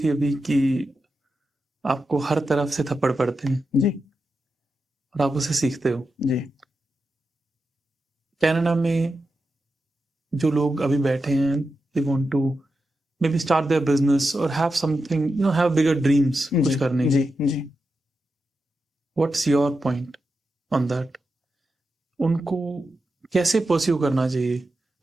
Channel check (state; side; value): normal; both; correlation 0.89